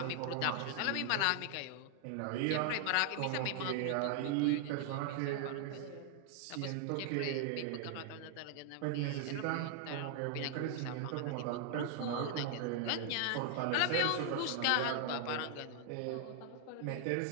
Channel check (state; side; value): different; both; correlation 0.00